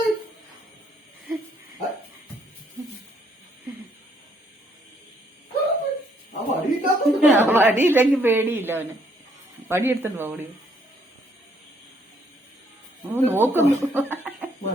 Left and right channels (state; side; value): normal; both; correlation 0.68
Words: വടിയില്ലെങ്കിൽ പേടിയില്ല അവന്. വടി എടുത്തിട്ട് ഓടി നോക്കുന്നു.